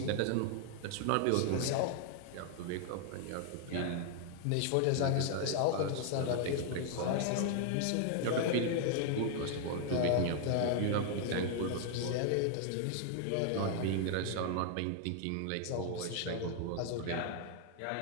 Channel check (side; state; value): both; different; correlation 0.00